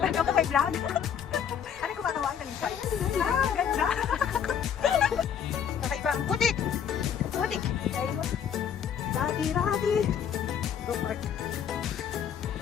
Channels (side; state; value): right; quieter; 8.2 dB